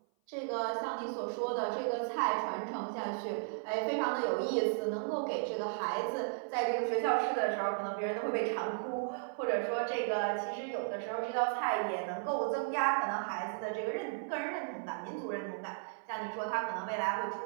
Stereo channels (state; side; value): silent; left; 54 dB below the other